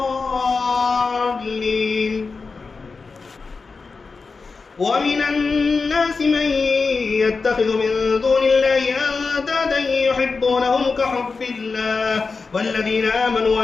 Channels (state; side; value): quieter; right; 4.4 dB